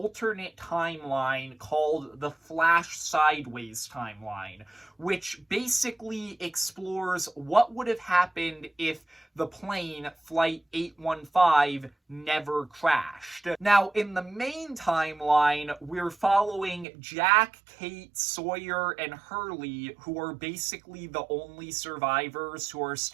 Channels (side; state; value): left; drops out; at 16.9 s